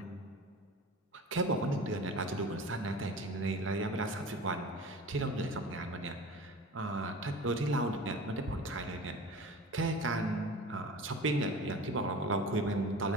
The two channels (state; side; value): normal; both; correlation 0.37